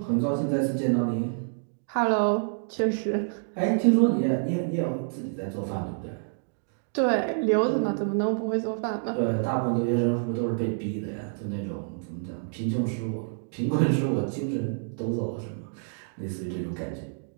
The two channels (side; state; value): left; silent; digital silence